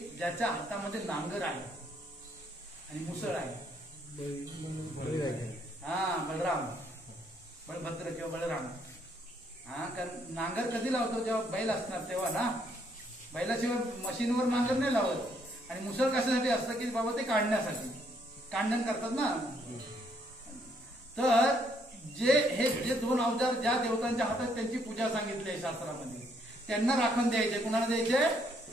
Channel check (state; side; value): normal; both; correlation 0.70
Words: ज्याच्या हातामध्ये नांगर आहे आणि मुसळ आहे? हा, बलराम, बलभद्र किंवा बलराम. हा, कारण नांगर कधी लावतो? जेव्हा बैल असणार तेव्हा ना. बैलाशिवाय मशीनवर नांगर नाही लावत. आणि मुसळ कशासाठी असतं की बाबा ते काढण्यासाठी, कांडण करतात ना. तर जे दोन अवजार ज्या देवतांच्या हातात त्यांची पूजा सांगितली आहे शास्त्रामध्ये, त्यांना राखण द्यायचे. कुणाला द्यायचे?